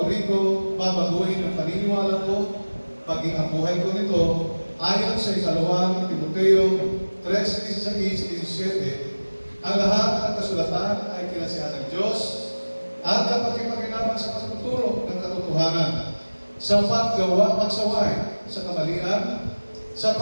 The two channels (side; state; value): both; inverted; correlation -1.00